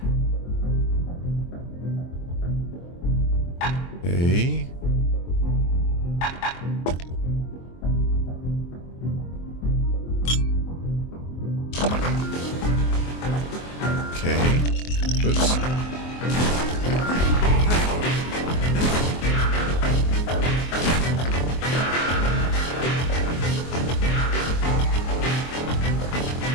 Okay. Okay. Oops.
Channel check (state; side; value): late; right; 23 ms